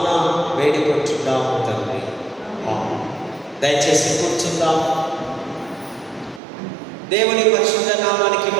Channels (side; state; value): left; drops out; at 6.4 s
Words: వేడుకుంటున్నాము తండ్రి. దయచేసి కూర్చుందాం. దేవుని పరిశుద్ధ నామానికి